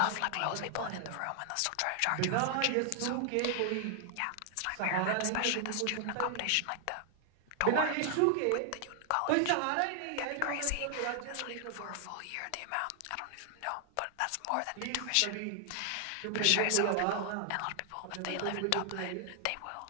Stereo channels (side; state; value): both; different; correlation 0.00